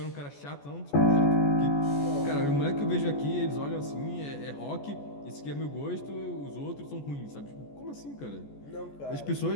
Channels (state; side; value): late; right; 14 ms